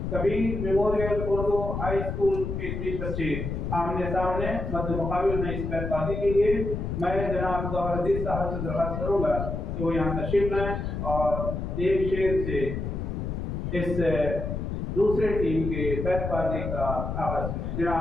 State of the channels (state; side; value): noise; left; rumble, 4 dB below the sound